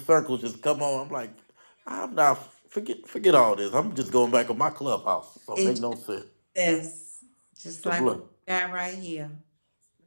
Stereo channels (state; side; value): inverted; both; correlation -1.00